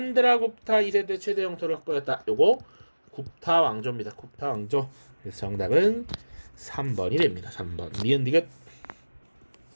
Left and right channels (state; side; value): inverted; both; correlation -1.00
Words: 2세대 최대 영토를 확보했다. 요거 굽타 왕조입니다. 굽타 왕조. 그래서 정답은 3번이 됩니다. 3번. 니은디귿.